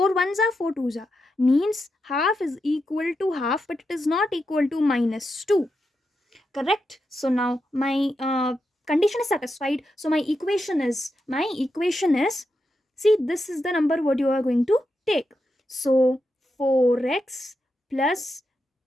ones are 4 twos are, means half is equal to half, but it is not equal to minus 2. Correct? So now my condition is satisfied. So my equation is see, this is the number what you are going to take. So 4x plus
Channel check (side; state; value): both; normal; correlation 0.86